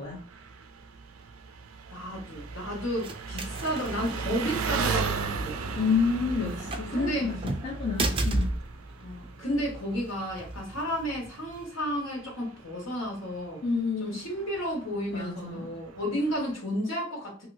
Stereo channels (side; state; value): both; normal; correlation 0.51